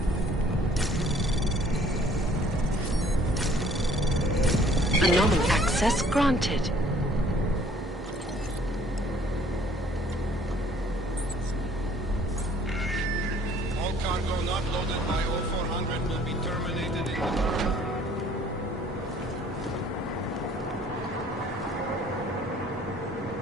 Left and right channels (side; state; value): both; normal; correlation 0.57